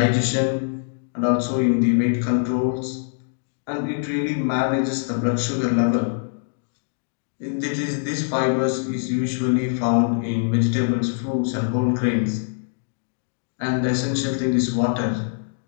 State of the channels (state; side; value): silent; right; digital silence